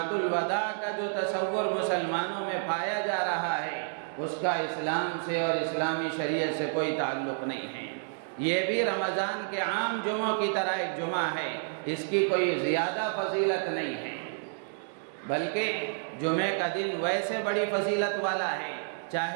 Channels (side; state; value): left; silent; digital silence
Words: الوداع کا جو تصور مسلمانوں میں پایا جا رہا ہے، اس کا اسلام سے اور اسلامی شریعت سے کوئی تعلق نہیں ہے۔ یہ بھی رمضان کے عام جمعوں کی طرح ایک جمعہ ہے، اس کی کوئی زیادہ فضیلت نہیں ہے، بلکہ جمعے کا دن ویسے بڑی فضیلت والا ہے،